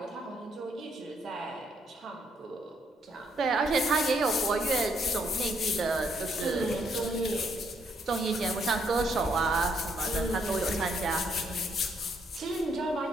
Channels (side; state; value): both; normal; correlation 0.72